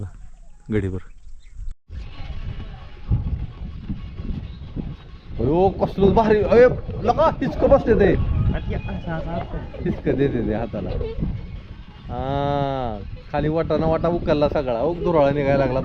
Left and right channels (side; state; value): both; identical; correlation 1.00